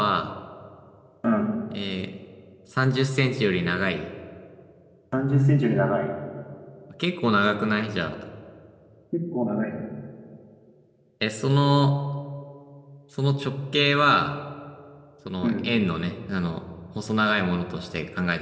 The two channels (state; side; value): identical; both; correlation 1.00